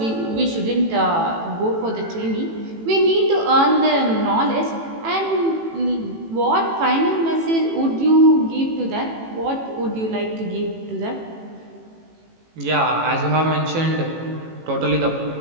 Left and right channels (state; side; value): late; left; 18 ms